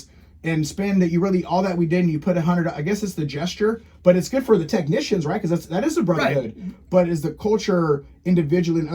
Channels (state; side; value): identical; both; correlation 1.00